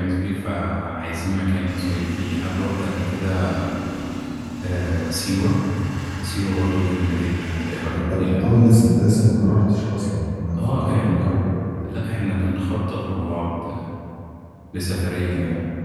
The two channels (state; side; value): identical; both; correlation 1.00